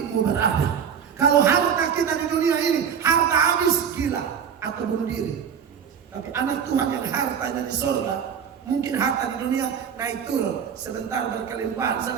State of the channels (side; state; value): left; quieter; 7.6 dB